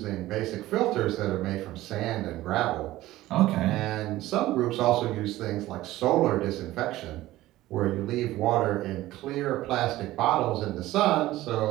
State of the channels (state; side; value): quieter; left; 16.2 dB